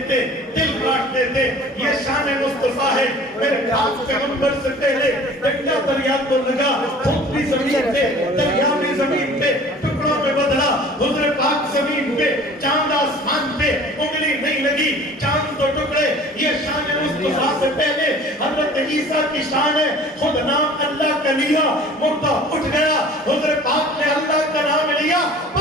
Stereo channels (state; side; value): normal; both; correlation 0.46